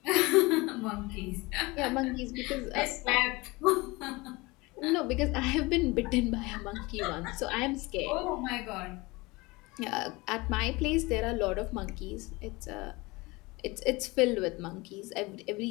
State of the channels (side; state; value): right; quieter; 23.4 dB